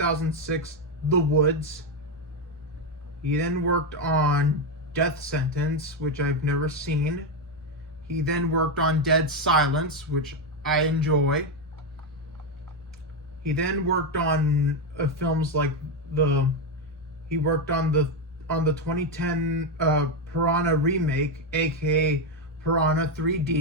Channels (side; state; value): both; normal; correlation 0.07